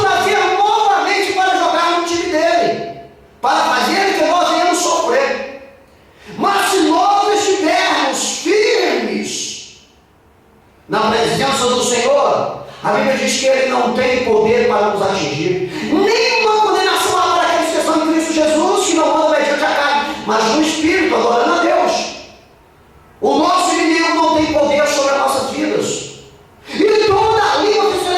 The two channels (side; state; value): both; identical; correlation 1.00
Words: trazer novamente para jogar no time dele, para fazer que nós venhamos sofrer. Mas se nós estivermos firmes na presença do Senhor, a Bíblia diz que Ele não tem poder para nos atingir. Nenhuma condenação há para aqueles que estão em Cristo Jesus, que não andam mediante a carne, mas no Espírito, adorando a Deus. O nosso inimigo não tem poder sobre as nossas vidas. E toda língua que se